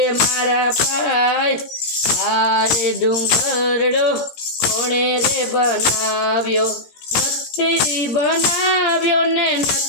મારા ભાઈ, આરે ડુંગરડો કોણે રે બનાવ્યો। નથી બનાવ્યો ને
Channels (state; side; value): late; right; 17 ms